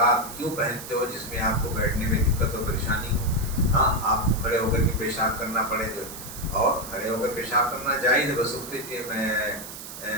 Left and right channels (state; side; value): noise; right; hiss, 11 dB below the sound